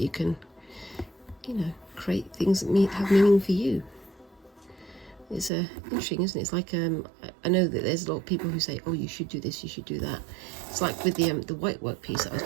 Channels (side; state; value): left; drops out; at 5.5 s